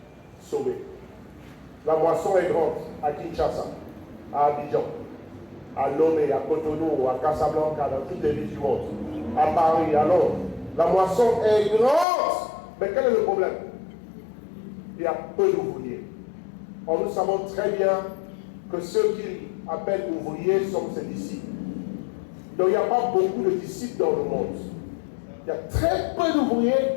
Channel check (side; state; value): right; drops out; at 12.1 s